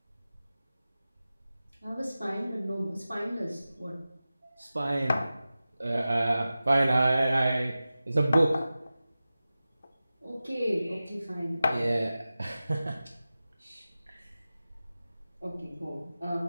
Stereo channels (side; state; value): both; inverted; correlation -0.95